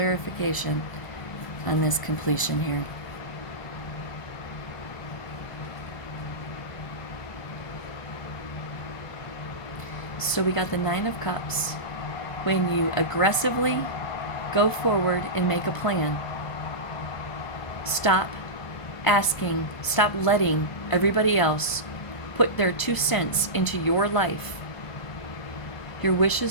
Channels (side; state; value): right; late; 1.0 ms